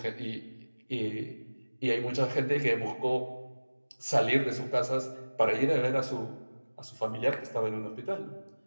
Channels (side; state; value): both; inverted; correlation -1.00